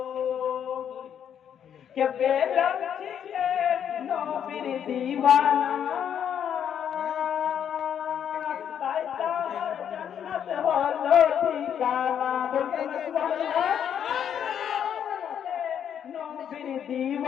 কে বেলাল ছিলেন নবীর দিওয়ানা তাই তার জান্নাত হলো ঠিকানা বলতে সুবহানাল্লাহ নবীর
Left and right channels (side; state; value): right; quieter; 8.9 dB